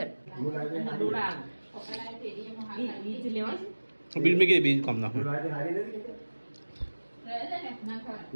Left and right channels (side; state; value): both; inverted; correlation -1.00